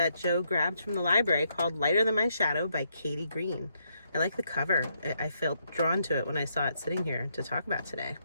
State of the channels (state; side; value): inverted; both; correlation -0.76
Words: Joe grabbed from the library called Lighter Than My Shadow by Katie Green. I like the cover. I felt drawn to it when I saw it sitting here to talk about today.